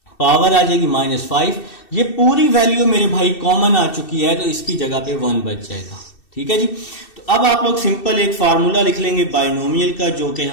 पावर आ जाएगी -5। ये पूरी वैल्यू मेरे भाई कॉमन आ चुकी है तो इसकी जगह पे 1 बच जाएगा। ठीक है जी, तो अब आप लोग सिंपल एक फार्मूला लिख लेंगे बाइनोमियल का, जो कि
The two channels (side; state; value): right; late; 2.7 ms